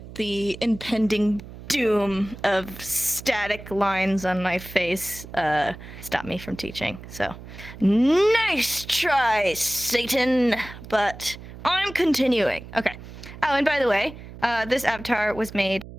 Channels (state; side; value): noise; right; hum, 15 dB below the sound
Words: the impending doom of static lines on my face stop me from teaching. So, nice try, Satan. But I'm continuing. Okay. Oh, and by the way, this avatar was made